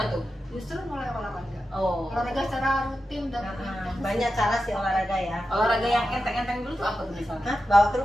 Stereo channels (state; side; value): normal; both; correlation 0.91